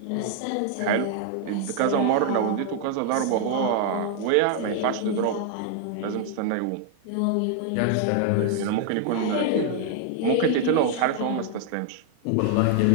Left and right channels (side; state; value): both; different; correlation 0.00